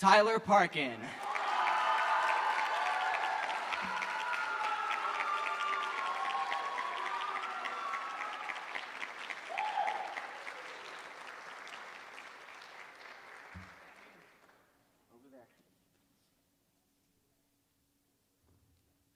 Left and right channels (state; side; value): identical; both; correlation 1.00